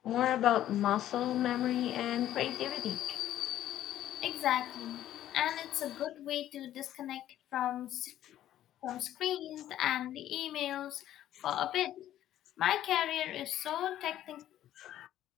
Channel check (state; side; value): quieter; right; 12.4 dB